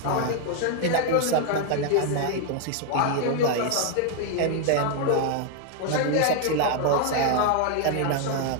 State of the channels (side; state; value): both; different; correlation 0.00